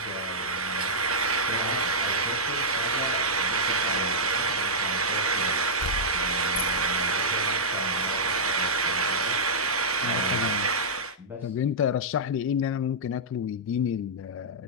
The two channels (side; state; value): both; normal; correlation -0.10